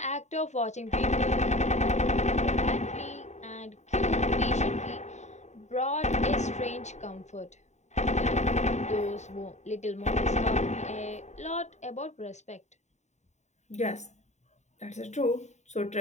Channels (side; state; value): right; late; 0.34 ms